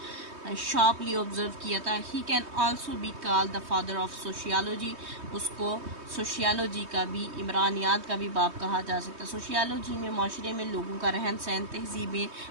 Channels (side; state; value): left; late; 3.2 ms